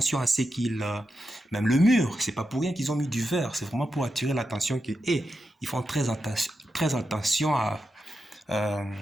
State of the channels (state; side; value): normal; both; correlation 0.88